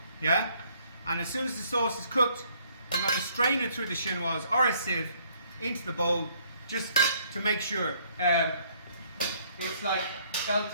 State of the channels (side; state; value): both; inverted; correlation -0.64